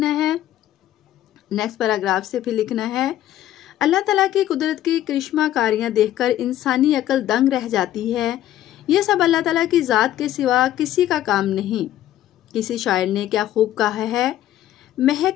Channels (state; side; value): quieter; right; 12.8 dB